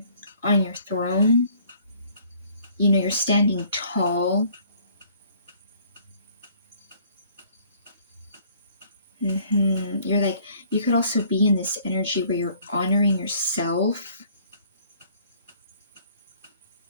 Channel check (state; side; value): inverted; both; correlation -0.58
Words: on your throne. You're standing tall. You're like, you could also be in this energy where you're honoring yourself.